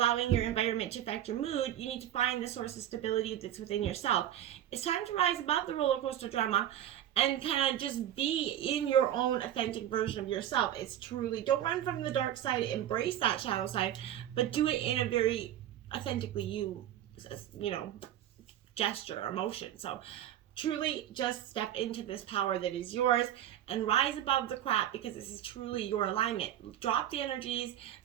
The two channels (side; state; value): left; quieter; 11.6 dB